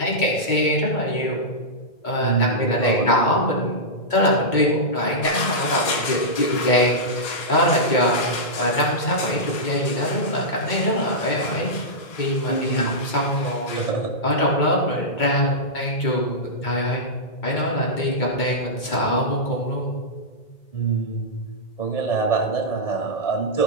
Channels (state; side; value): late; right; 2.4 ms